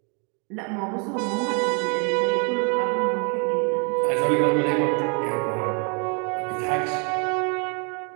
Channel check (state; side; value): quieter; left; 36.0 dB